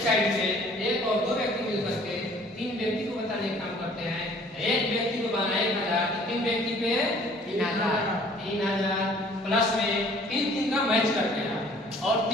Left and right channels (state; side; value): normal; both; correlation 0.55